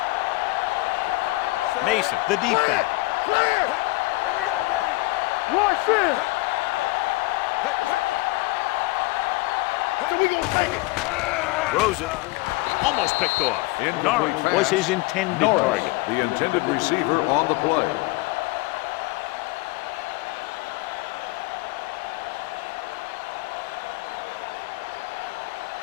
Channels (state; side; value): quieter; right; 22.2 dB